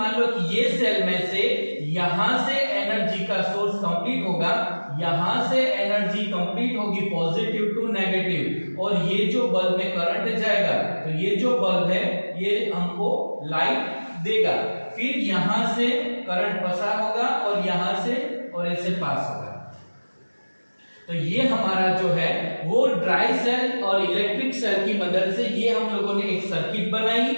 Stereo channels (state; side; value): inverted; both; correlation -1.00